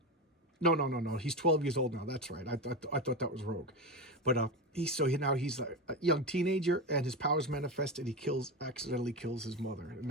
no, he's 12 years old now. That's right. I thought that was Rogue, but he's a young teenager, and his powers manifest, and he accidentally kills his mother. And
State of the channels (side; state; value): both; normal; correlation 0.18